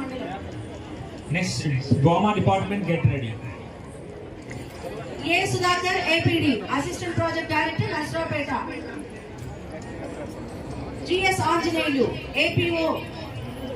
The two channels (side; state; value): both; identical; correlation 1.00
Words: మండలం. నెక్స్ట్ గోమా department get ready. A Sudhakar APD assistant project director Narasaraopet. GS Anjaneyulu APO